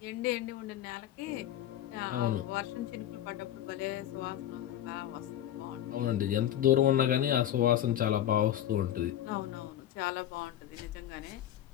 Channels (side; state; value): right; quieter; 11.6 dB